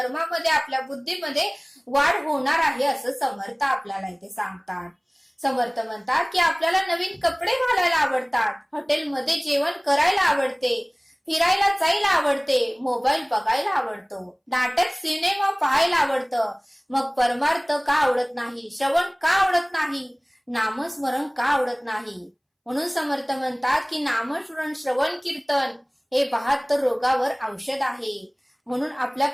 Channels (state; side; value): identical; both; correlation 1.00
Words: आपल्या बुद्धीमध्ये वाढ होणार आहे असं समर्थ आपल्याला इथे सांगतात. समर्थ म्हणतात की आपल्याला नवीन कपडे घालायला आवडतात, हॉटेलमध्ये जेवण करायला आवडते, फिरायला जायला आवडते, मोबाईल बघायला आवडतो, नाटक, सिनेमा पाहायला आवडतं. मग परमार्थ का आवडत नाही? श्रवण का आवडत नाही? नामस्मरण का आवडत नाही? म्हणून समर्थ म्हणतात की नामस्मरण, श्रवण, कीर्तन हे 72 रोगावर औषध आहे. म्हणून